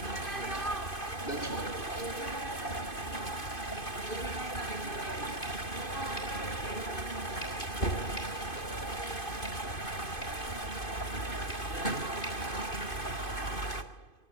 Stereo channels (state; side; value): late; right; 2.5 ms